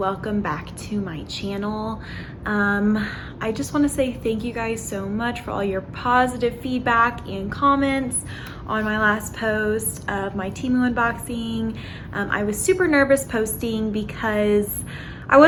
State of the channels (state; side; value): identical; both; correlation 1.00